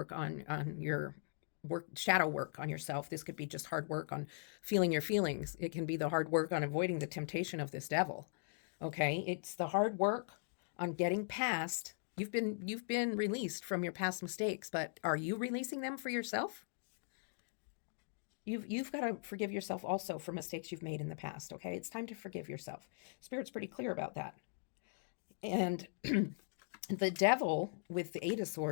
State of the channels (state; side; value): silent; right; digital silence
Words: on your work, shadow work on yourself. This could be just hard work on feeling your feelings. It can be the hard work on avoiding the temptation of this Devil. Okay, it's the hard work on getting past. You've been released from your past mistakes, but are you releasing them for yourself? You've got to forgive yourself also for mistakes you've made in the past, okay? It's time to forgive yourself. Spirit's pretty clear about that. And the Devil with the Eight of